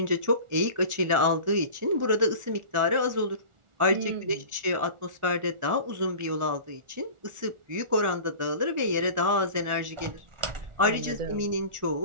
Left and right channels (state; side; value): late; left; 1.4 ms